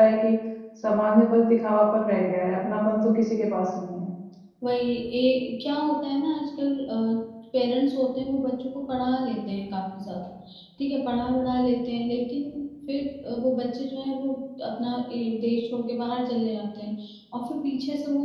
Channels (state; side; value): identical; both; correlation 1.00